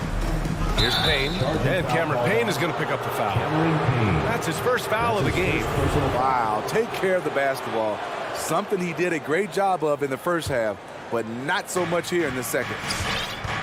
Here's Payne, and Cameron Payne is going to pick up the foul. That's his first foul of the game. Wow, take care of the basketball. Something he did a great job of in the first half, but not so much here in the second.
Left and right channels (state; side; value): identical; both; correlation 1.00